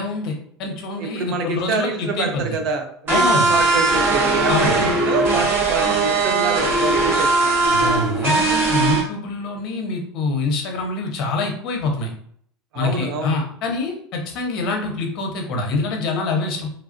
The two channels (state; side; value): normal; both; correlation 0.36